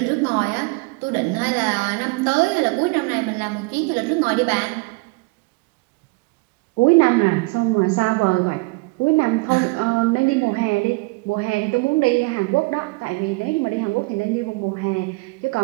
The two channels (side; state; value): left; quieter; 26.8 dB